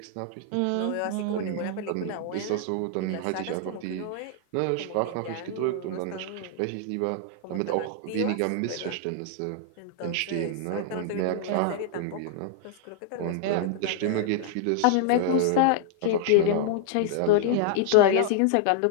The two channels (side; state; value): both; different; correlation -0.01